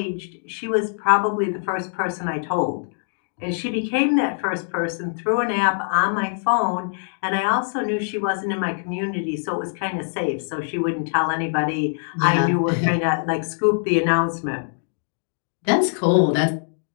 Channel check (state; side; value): silent; right; digital silence